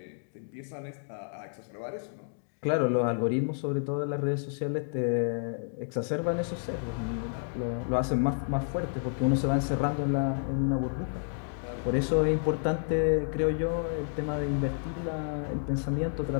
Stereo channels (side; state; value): right; silent; digital silence